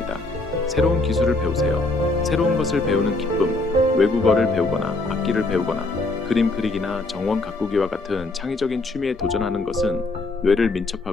새로운 기술을 배우세요. 새로운 것을 배우는 기쁨, 외국어를 배우거나 악기를 배우거나 그림 그리기나 정원 가꾸기와 같은 창의적인 취미에 도전하는 것은 뇌를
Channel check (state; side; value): quieter; right; 3.0 dB